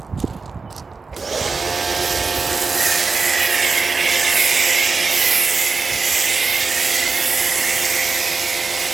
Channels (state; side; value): quieter; left; 4.5 dB